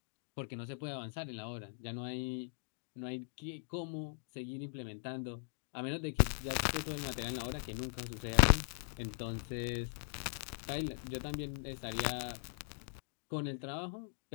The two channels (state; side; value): silent; right; digital silence